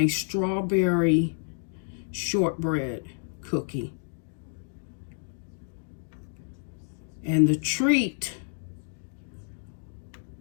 strawberry shortbread cookie. And the treat,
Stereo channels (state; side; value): silent; right; digital silence